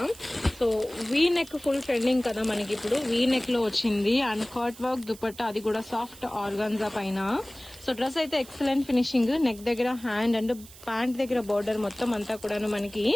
So V neck full trending కదా మనకి ఇప్పుడు. వీ నెక్ లో వచ్చింది అండ్ కట్ వర్క్ దుపట్టా, అది కూడా సాఫ్ట్ ఆర్గాన్జా పైన. సో డ్రెస్ అయితే ఎక్సలెంట్ ఫినిషింగ్. నెక్ దగ్గర హ్యాండ్ అండ్ ప్యాంట్ దగ్గర బోర్డర్ మొత్తం అంతా కూడాను మనకి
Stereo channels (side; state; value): right; noise; hiss, 19 dB below the sound